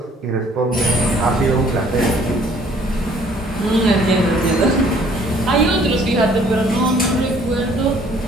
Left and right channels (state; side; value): normal; both; correlation 0.58